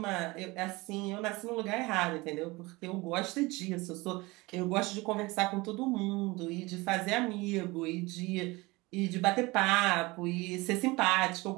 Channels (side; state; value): left; quieter; 22.9 dB